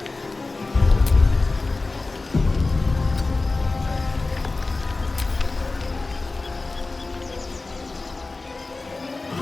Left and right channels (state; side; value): quieter; right; 3.4 dB